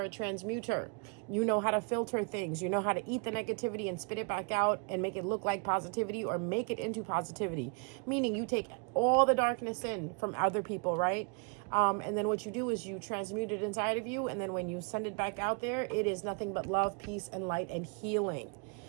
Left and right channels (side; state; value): left; quieter; 37.3 dB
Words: a transmuter, you know how to filter things, you know how to eat the negativity and spit it back out and make it look like positivity or make it into positivity. Meaning you take all the darkness in from other people, right? And then what you do is you transmute it inside of you. And then when you send it back out there, it is nothing but love, peace, and light and healing.